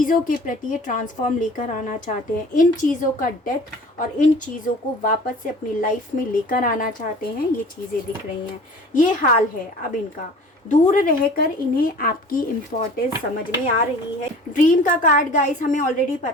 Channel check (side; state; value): both; normal; correlation 0.44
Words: के प्रति ये ट्रांसफॉर्म लेकर आना चाहते हैं। इन चीज़ों का डेथ और इन चीज़ों को वापस से अपनी लाइफ में लेकर आना चाहते हैं। ये चीज़ें दिख रही हैं। ये हाल है अब इनका। दूर रहकर इन्हें आपकी इम्पोर्टेंस समझ में आ रही है। ड्रीम का कार्ड गाइस, हमें ऑलरेडी